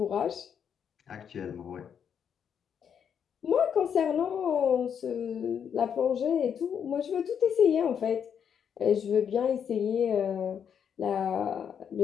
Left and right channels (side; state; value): right; quieter; 7.9 dB